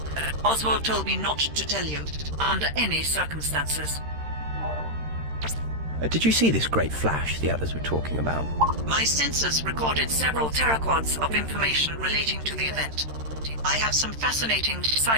Oswald told me not to tell you, under any circumstances. Did you see this great flash the others were talking about? My sensors recorded several teraquads of information relating to the event. I have some fascinating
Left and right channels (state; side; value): late; left; 13 ms